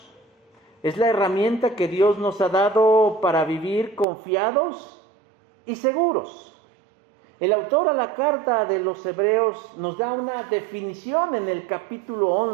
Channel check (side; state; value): left; drops out; at 4.0 s